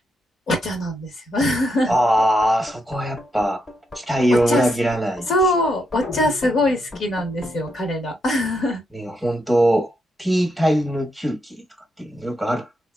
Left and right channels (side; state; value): both; normal; correlation 0.80